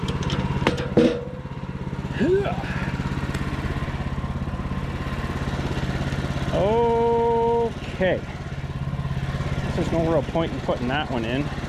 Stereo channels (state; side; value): identical; both; correlation 1.00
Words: Okay. There's no real point in putting that one in.